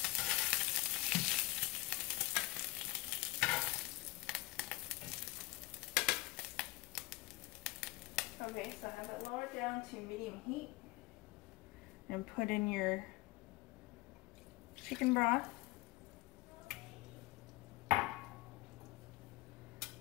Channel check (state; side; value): quieter; right; 20.9 dB